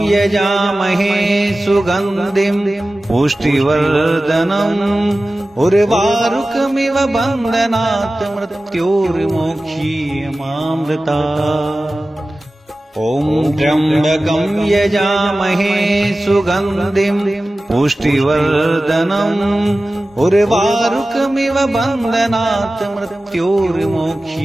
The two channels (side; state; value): both; normal; correlation 0.96